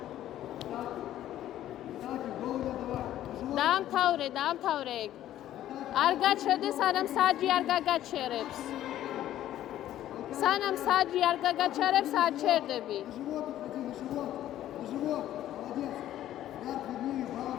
დაამთავრე ეგ. არ გაჩერდე, სანამ საჯი არ გაგაჩერებს. სანამ საჯი არ გაგაჩერებს, არ ჩერდები.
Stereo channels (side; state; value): right; quieter; 12.7 dB